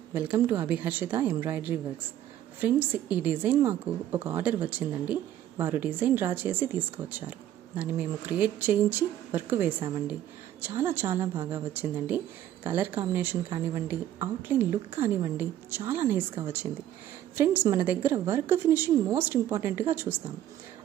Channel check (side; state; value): left; quieter; 12.0 dB